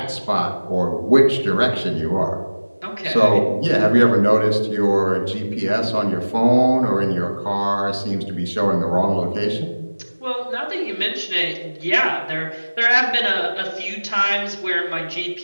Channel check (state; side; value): inverted; both; correlation -1.00